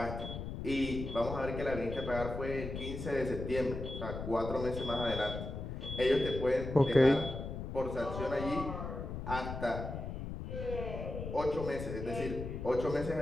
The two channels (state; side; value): noise; left; rumble, 6 dB below the sound